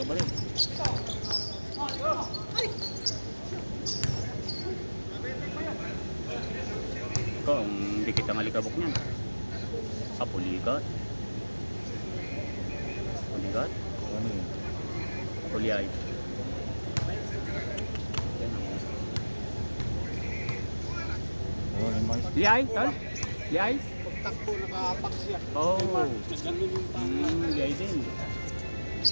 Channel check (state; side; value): inverted; both; correlation -1.00